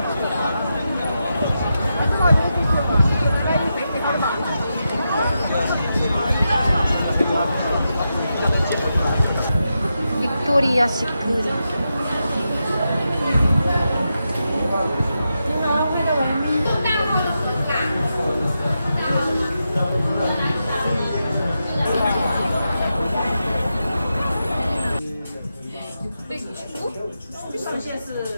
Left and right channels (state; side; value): inverted; both; correlation -0.87